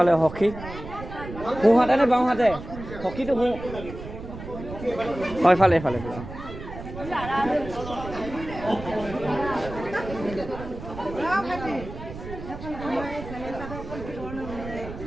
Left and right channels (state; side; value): noise; right; rumble, 11 dB below the sound